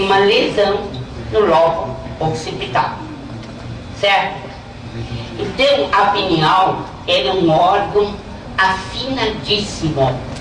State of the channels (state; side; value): identical; both; correlation 1.00